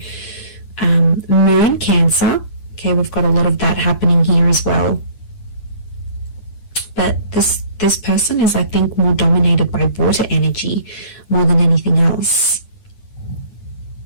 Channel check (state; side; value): late; right; 9.7 ms